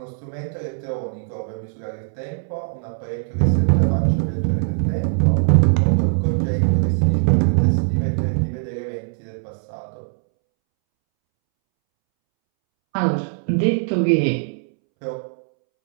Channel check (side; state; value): left; silent; 65 dB below the other